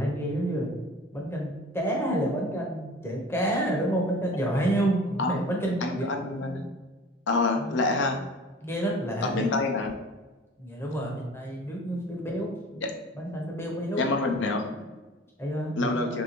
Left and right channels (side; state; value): both; normal; correlation 0.42